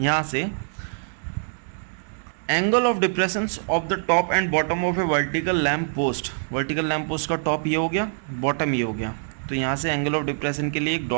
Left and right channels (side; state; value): left; silent; 62 dB below the other